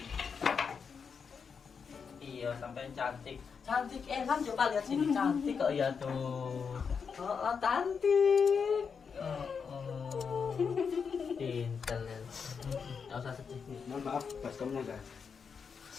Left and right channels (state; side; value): quieter; right; 6.1 dB